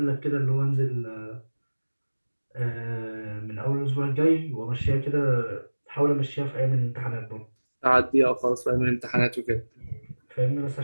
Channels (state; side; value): inverted; both; correlation -1.00